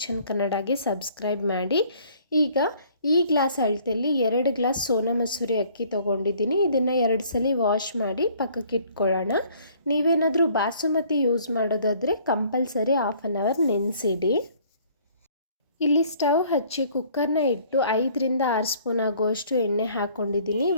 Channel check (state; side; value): inverted; both; correlation -0.57